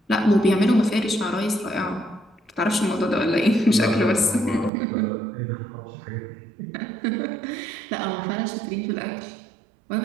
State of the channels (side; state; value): left; drops out; at 4.7 s